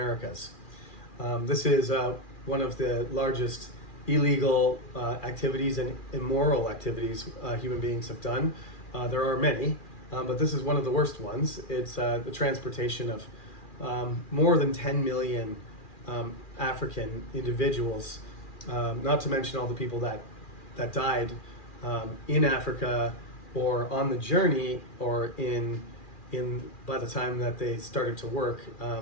This is one of the largest illegal activities and immoral activities human beings have done. There are many, but this is one of the worst ones. It's the transportation of more than 10 million African individuals, not to mention all the people that died in Africa or on the journey or in by the time that they started to work,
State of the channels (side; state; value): right; late; 2.4 ms